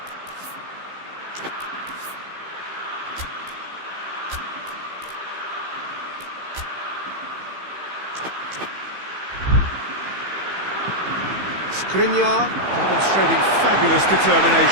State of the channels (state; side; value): late; left; 15 ms